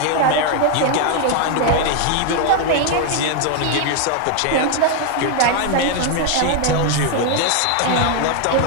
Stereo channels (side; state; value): both; different; correlation 0.00